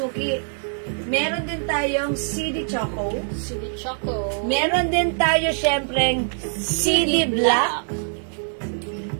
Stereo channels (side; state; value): left; silent; digital silence